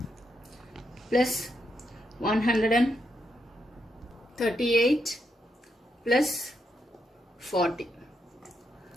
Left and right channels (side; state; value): both; normal; correlation 0.81